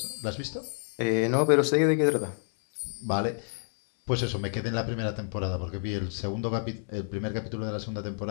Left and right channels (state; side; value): silent; right; 59 dB below the other